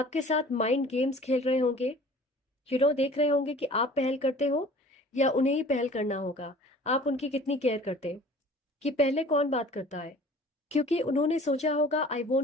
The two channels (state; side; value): normal; both; correlation 0.47